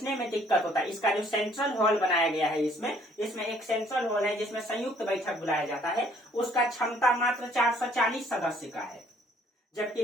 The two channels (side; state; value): both; normal; correlation 0.61